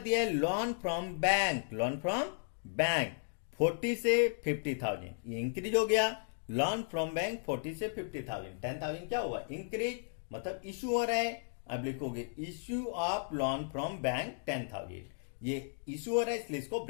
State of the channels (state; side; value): silent; right; digital silence